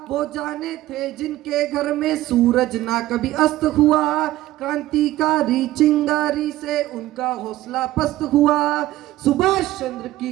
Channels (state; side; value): quieter; left; 15.6 dB